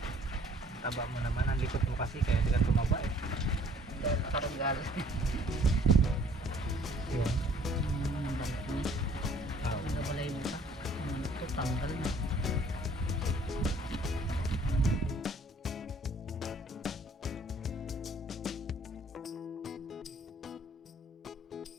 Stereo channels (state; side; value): normal; both; correlation 0.57